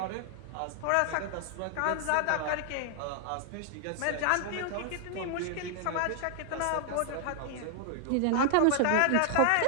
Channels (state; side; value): different; both; correlation 0.00